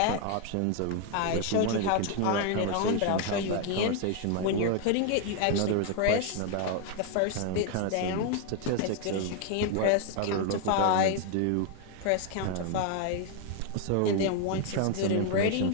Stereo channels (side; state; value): both; different; correlation 0.00